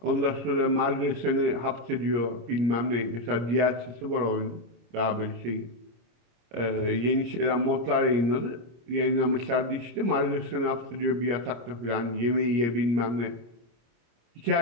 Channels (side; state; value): left; late; 25 ms